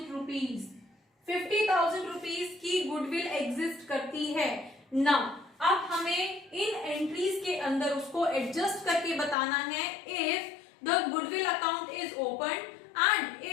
rupees. 50,000 rupees की गुडविल एग्जिस्ट करती है। नाउ अब हमें इन एंट्रीज के अंदर उसको एडजस्ट करके बताना है, if the goodwill account is open and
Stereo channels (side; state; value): right; drops out; at 9.3 s